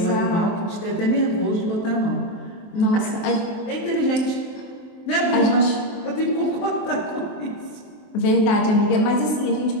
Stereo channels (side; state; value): right; late; 23 ms